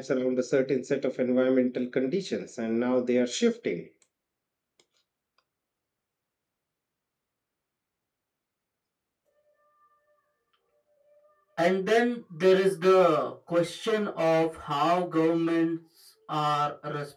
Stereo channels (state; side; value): identical; both; correlation 1.00